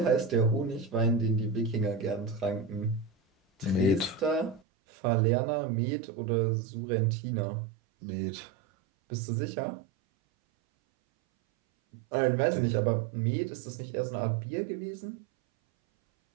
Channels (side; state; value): left; drops out; at 4.6 s